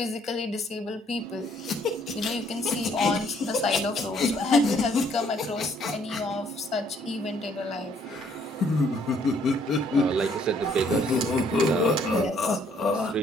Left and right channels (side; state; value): both; normal; correlation 0.65